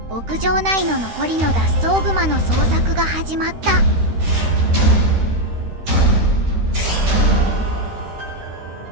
牧場内の残りの脱走グマの捜索が始まった。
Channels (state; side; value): late; left; 13 ms